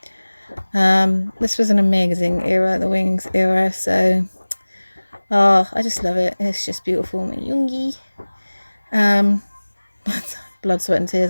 this was an amazing era, the Wings era, so I just love it. It's just beautiful. Yoongi. Blood, sweat and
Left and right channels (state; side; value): inverted; both; correlation -1.00